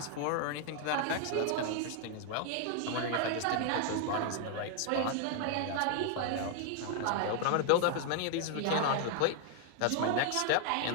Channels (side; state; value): both; different; correlation 0.00